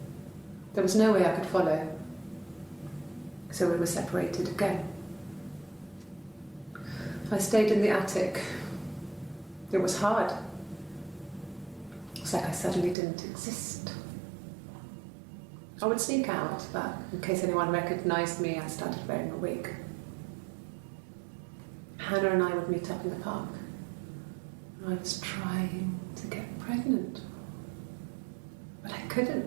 There was no way I could follow, so we were separated again. I stayed in the attic. It was hard. It's like I suddenly didn't exist. I would sneak out, but in case anyone recognised me, I started wearing a wig. Hannah and I would meet up in the park. I was trying to get pregnant. But I couldn't.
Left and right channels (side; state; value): left; drops out; at 13.0 s